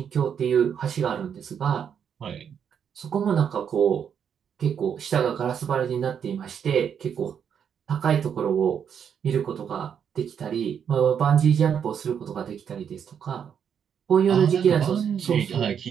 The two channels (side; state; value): left; quieter; 7.9 dB